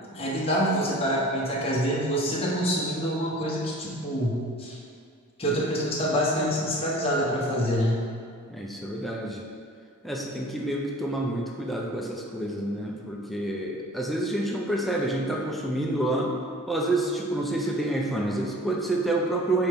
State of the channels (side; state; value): both; normal; correlation 0.46